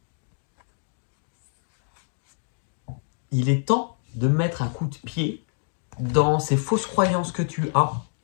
il est temps de mettre un coup de pied dans ces fausses croyances que tu as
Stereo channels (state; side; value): silent; right; digital silence